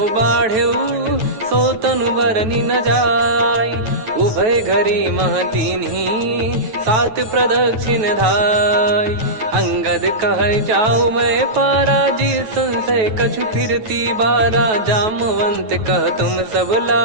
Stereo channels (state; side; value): late; left; 9.2 ms